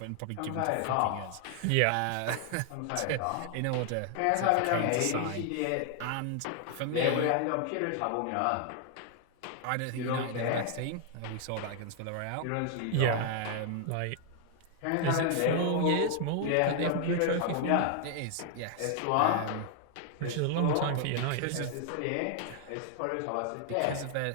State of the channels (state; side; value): different; both; correlation 0.00